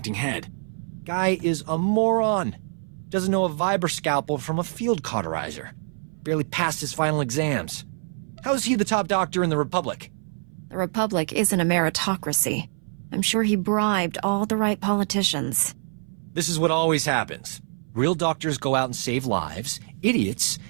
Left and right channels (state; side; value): silent; left; 59 dB below the other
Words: head. Guy is a moron. Doesn't know a Viber scalpel from a field cauterizer. Barely passed his final exams. How is he the top doctor in the Republic? The Republic isn't a meritocracy. I'm sure he bribed all the right politicians. This is what always happens. Real doctors go out and save lives. Idiots